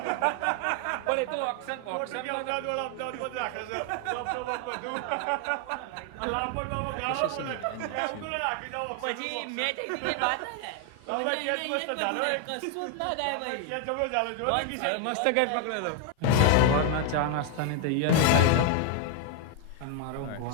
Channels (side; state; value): both; different; correlation 0.01